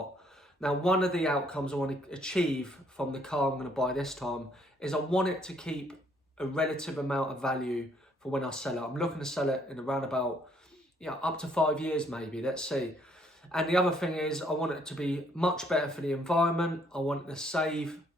Now, one of the outcomes I want to achieve from the car I'm going to buy this time is I want it to keep a relative amount of value for when I sell it. I'm looking to sell it in around about, up to 5 years maybe, let's see. And the other thing is I want it to be much better for the environment. I want it to save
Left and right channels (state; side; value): normal; both; correlation 0.66